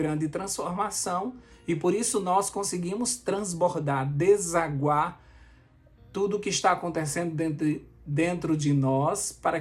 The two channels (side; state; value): both; identical; correlation 1.00